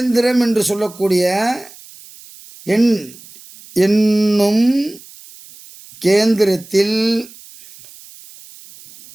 என்று சொல்லக்கூடிய என்னும் கேந்திரத்தில்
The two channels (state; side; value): noise; right; hiss, 21 dB below the sound